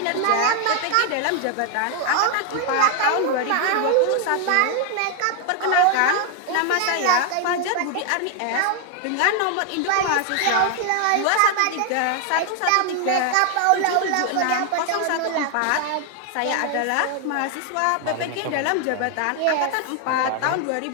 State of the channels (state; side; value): different; both; correlation 0.00